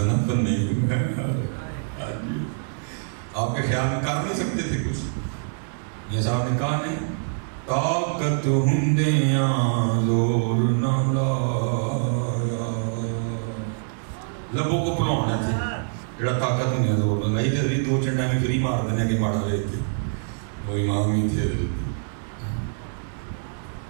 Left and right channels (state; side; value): silent; left; digital silence